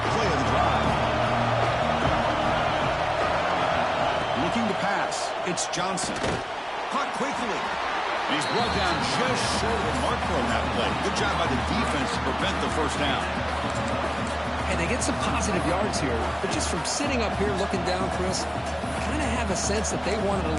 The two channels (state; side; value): identical; both; correlation 1.00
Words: play of the drive. Looking to pass. It's Johnson. Caught quickly. And he's brought down just short of the marker on that play. Good job by the defense to prevent the 1st down. And they get some positive yards here, but just from sitting up here looking down, Chris, I kind of have a sense that they wanted a